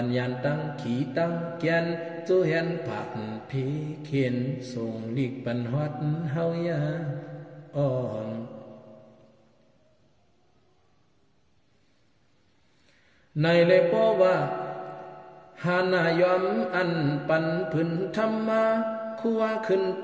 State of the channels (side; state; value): both; identical; correlation 1.00